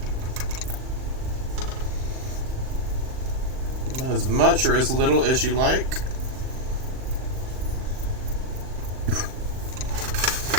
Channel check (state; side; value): late; left; 39 ms